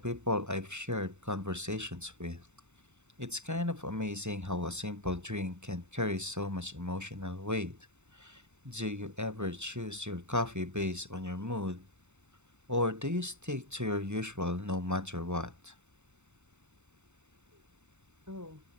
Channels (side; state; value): left; late; 0.83 ms